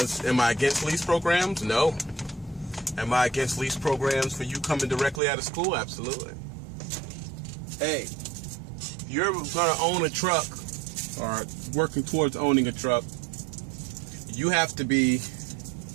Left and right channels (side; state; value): left; drops out; at 5.2 s